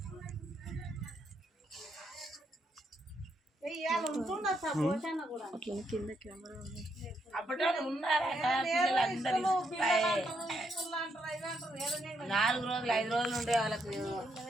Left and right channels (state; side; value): normal; both; correlation 0.77